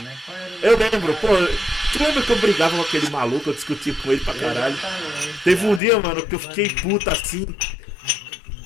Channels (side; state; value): right; drops out; at 5.8 s